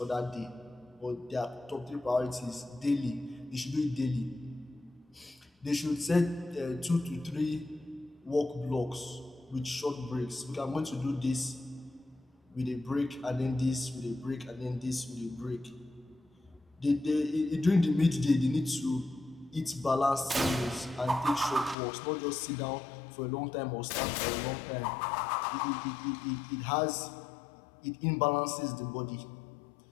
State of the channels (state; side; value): drops out; right; at 21.8 s